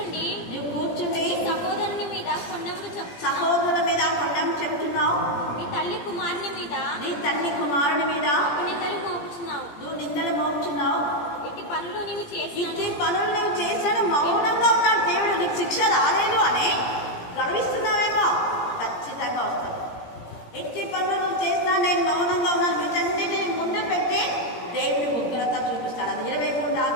నీవు కూర్చుండి సహోదరుని మీద కొండములు సహోదరుల మీద కొండం చెప్తున్నావు. నీ తల్లి కుమారుని మీద నిందలు మోపుచున్నావు. నువ్వు నిందలు మోపుచున్నావు. ఇట్టి పనులు నువ్వు చేశాను మౌనంగా ఉన్నాడు దేవుడు. నీకు శిక్ష రాలేదు అని గర్విస్తున్నావేమో, ఖచ్చితంగా వస్తుంది. ఇట్టి పనులు నువ్వు చేసినా నేను మౌనంగా ఉన్నాను, వీటన్నిటిని ముందు పెట్టి దేవుడి ఉగ్రత చూపిస్తాడు. అది 23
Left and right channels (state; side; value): late; right; 17 ms